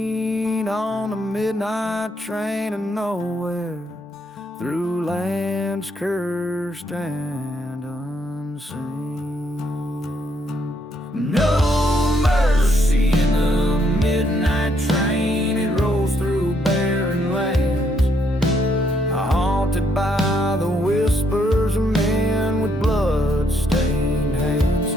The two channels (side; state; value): both; normal; correlation 0.73